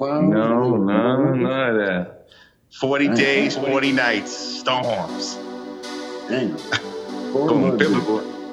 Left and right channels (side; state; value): both; identical; correlation 1.00